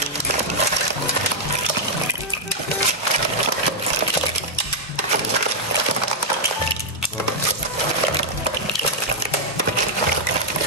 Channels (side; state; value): both; normal; correlation -0.05